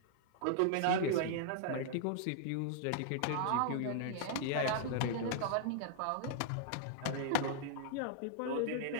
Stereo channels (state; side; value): different; both; correlation -0.01